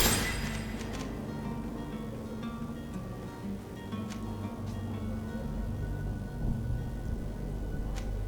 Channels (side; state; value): both; identical; correlation 1.00